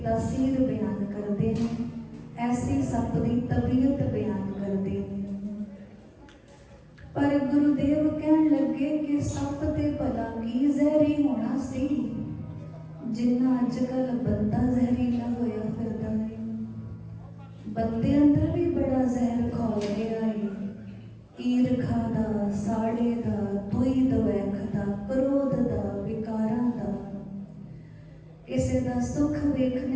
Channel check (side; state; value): both; identical; correlation 1.00